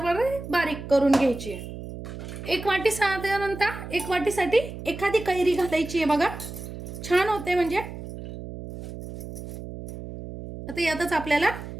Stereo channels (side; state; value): right; noise; hum, 10 dB below the sound